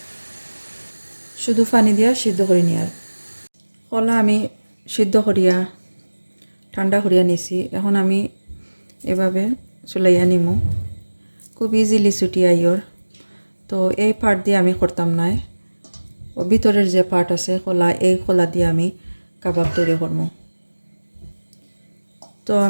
শুধু পানি দিয়া সিদ্ধ করে নিয়ার। কলা আমি সিদ্ধ করিয়া ঠান্ডা করিয়া নিছি। এখন আমি এভাবে চুলাইয়া নিমু, খুব ইজিলি ছুটিয়া আইয়র। তো এই পার্ট দিয়ে আমি করতাম না, ও ভিতরের যে পার্ট আছে কলা, এই কলা দিয়ে আমি কাবাব তৈরি করবো। তো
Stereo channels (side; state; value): both; inverted; correlation -1.00